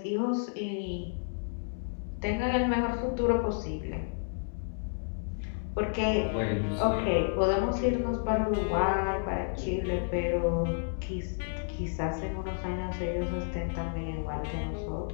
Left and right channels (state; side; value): silent; right; digital silence